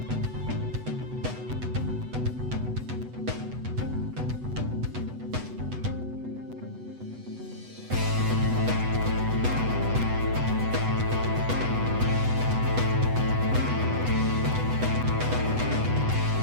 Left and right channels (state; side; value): late; left; 8.0 ms